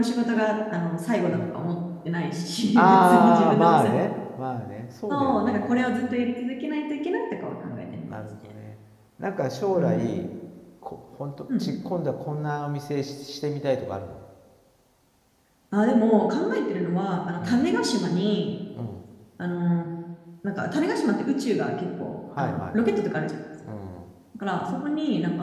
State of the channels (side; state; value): both; identical; correlation 1.00